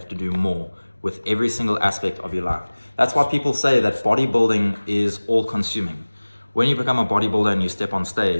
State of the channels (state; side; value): inverted; both; correlation -1.00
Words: to do more with every single aspect of your life. That's why people say that bodybuilding is all consuming. When you become a bodybuilder and you step on